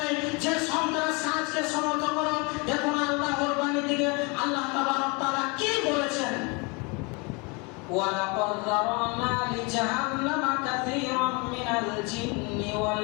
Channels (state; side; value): quieter; right; 29.9 dB